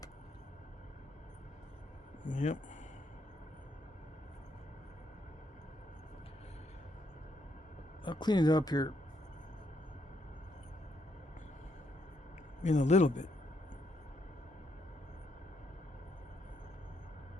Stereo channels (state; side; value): normal; both; correlation 0.76